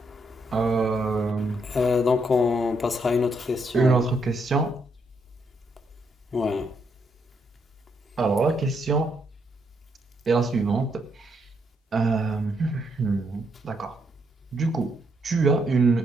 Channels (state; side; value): normal; both; correlation 0.76